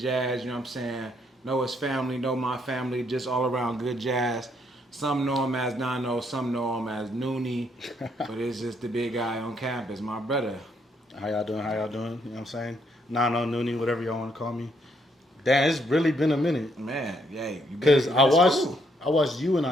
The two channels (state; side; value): normal; both; correlation 0.72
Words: you know what I'm saying? Know his family, know my family, just all around good jazz. Some know him as Nano, some know him as Noonie, but it's just the big guy on campus, my brother. How y'all doing? You know what I'm saying? Nano, Noonie, whatever y'all want to call me. Damn, it's really been a minute. Man, yeah, Because I watched you in